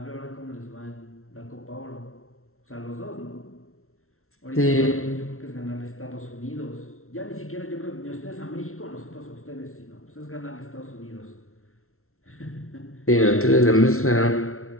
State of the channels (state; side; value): late; right; 0.62 ms